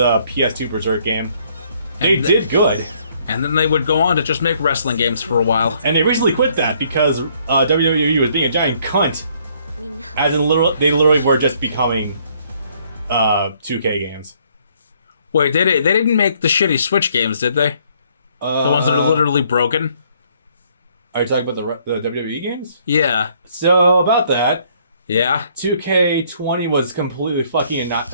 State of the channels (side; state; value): both; inverted; correlation -0.65